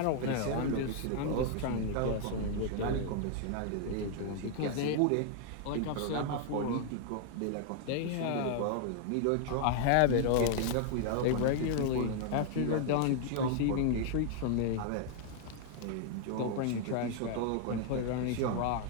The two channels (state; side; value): different; both; correlation 0.00